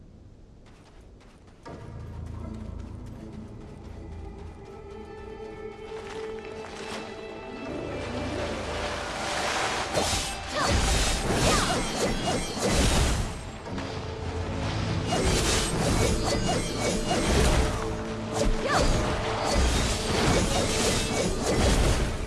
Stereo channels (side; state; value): both; identical; correlation 1.00